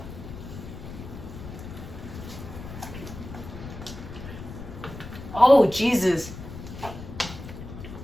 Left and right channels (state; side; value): noise; left; rumble, 11 dB below the sound